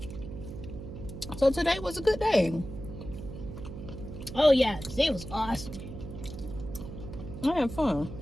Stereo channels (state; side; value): noise; right; hum, 10 dB below the sound